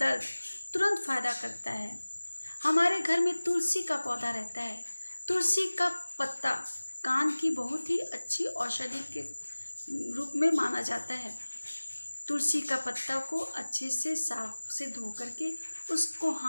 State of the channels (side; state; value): both; inverted; correlation -1.00